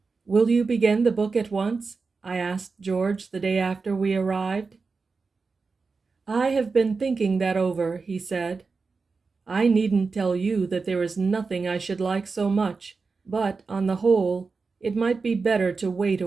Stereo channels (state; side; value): quieter; left; 4.5 dB